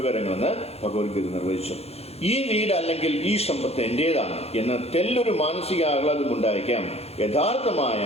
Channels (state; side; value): late; right; 0.30 ms